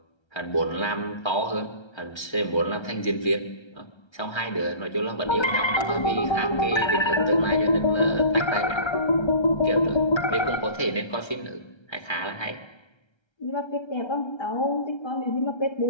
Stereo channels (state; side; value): late; right; 1.3 ms